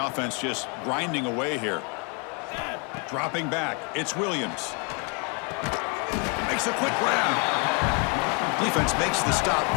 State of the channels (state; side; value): quieter; right; 35.0 dB